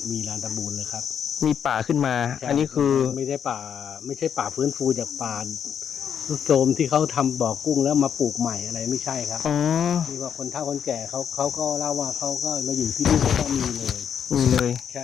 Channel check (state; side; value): quieter; right; 8.1 dB